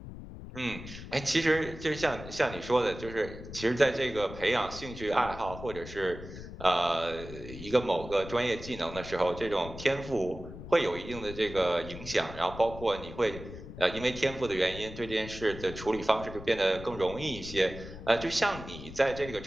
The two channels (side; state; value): left; noise; rumble, 12 dB below the sound